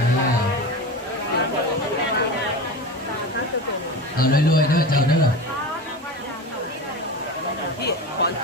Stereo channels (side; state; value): both; normal; correlation 0.28